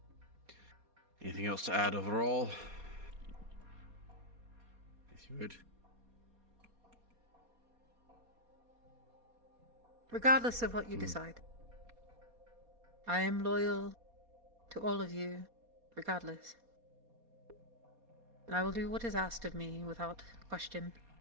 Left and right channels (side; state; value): left; late; 4.2 ms